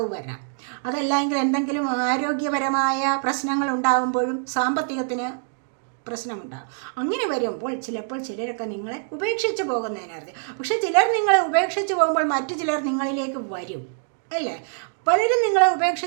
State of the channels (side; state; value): left; silent; digital silence